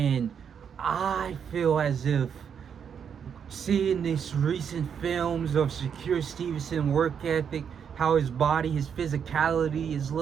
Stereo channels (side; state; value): left; quieter; 7.5 dB